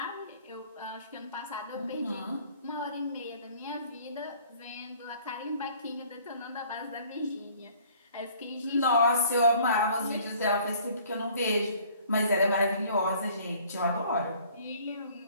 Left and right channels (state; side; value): inverted; both; correlation -0.55